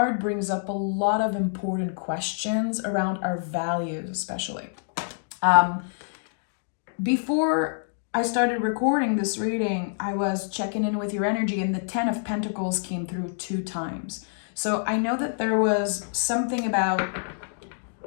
brings up a lot of important questions around our values, especially. Before I started recording this reading, I was checking in with your energy and the 10 of Pentacles came through 2 times. So I know that there was something about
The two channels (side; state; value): right; silent; digital silence